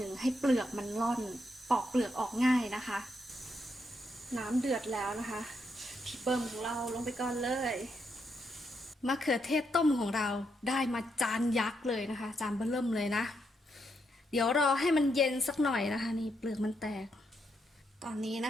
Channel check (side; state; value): both; normal; correlation 0.80